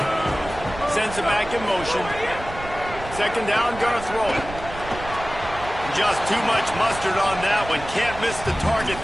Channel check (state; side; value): noise; right; rumble, 12 dB below the sound